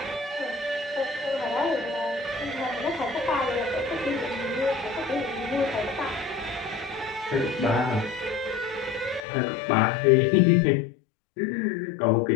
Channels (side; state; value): right; drops out; at 9.2 s